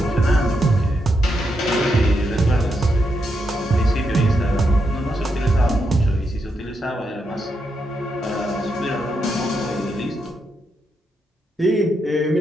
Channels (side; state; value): both; normal; correlation 0.82